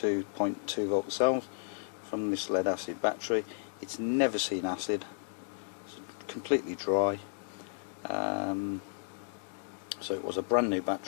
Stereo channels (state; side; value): silent; right; digital silence